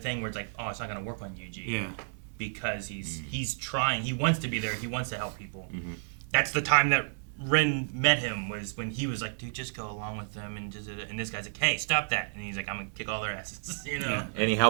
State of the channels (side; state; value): left; silent; 57 dB below the other